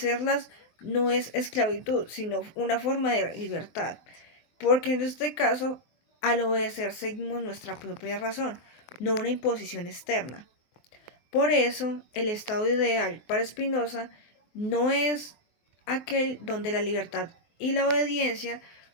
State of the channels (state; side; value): late; right; 23 ms